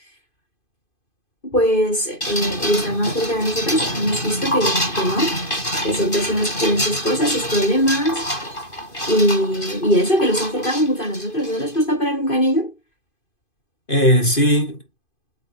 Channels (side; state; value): right; late; 2.5 ms